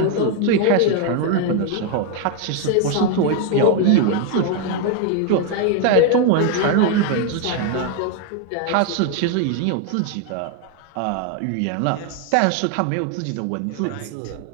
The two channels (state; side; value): different; both; correlation 0.01